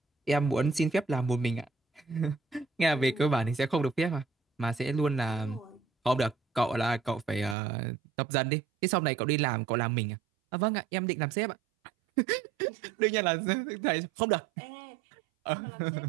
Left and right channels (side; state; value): left; drops out; at 7.6 s